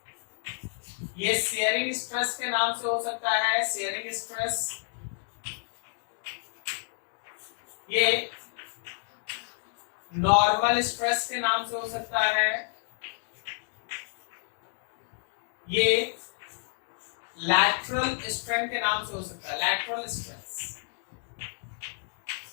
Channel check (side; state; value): right; silent; digital silence